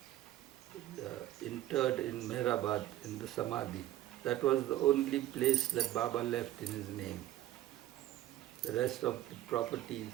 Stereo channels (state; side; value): quieter; left; 13.9 dB